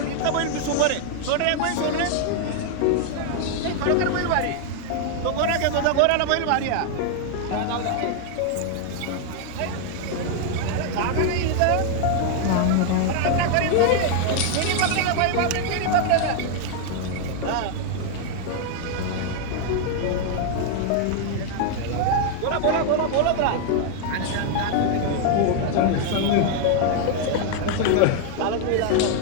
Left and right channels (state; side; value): different; both; correlation 0.00